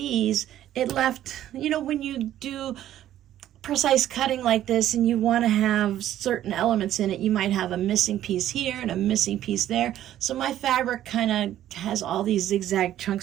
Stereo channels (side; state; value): left; quieter; 12.3 dB